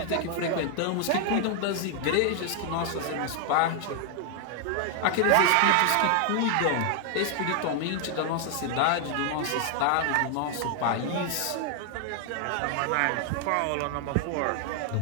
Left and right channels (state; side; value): different; both; correlation 0.00